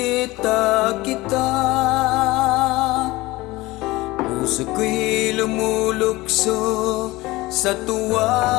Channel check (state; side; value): quieter; right; 20.1 dB